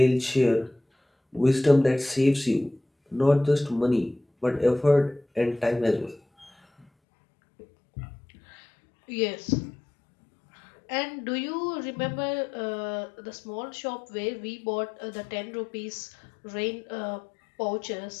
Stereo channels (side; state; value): right; drops out; at 6.9 s